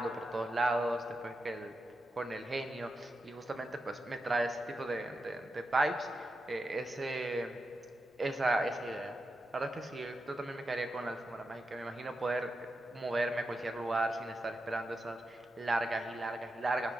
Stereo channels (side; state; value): both; normal; correlation 0.88